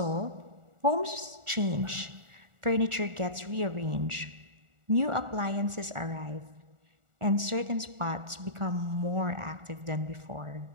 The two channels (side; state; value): left; late; 1.4 ms